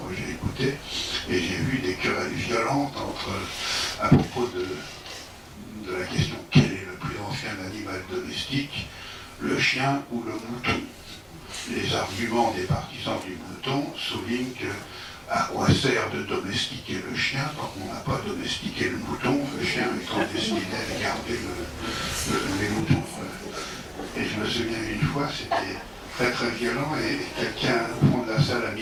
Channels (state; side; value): identical; both; correlation 1.00